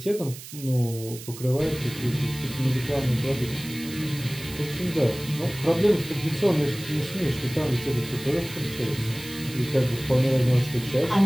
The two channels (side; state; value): right; noise; hiss, 14 dB below the sound